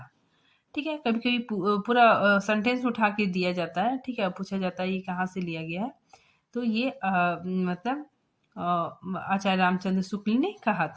ठीक है, कभी कभी पूरा सेंटेंस उठा के दिया जाता है। ठीक है, पूछा जाता है ये कहाँ से लिया गया है, तो ये मतलब आचार्य रामचंद्र शुक्ल ने कहा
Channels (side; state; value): both; identical; correlation 1.00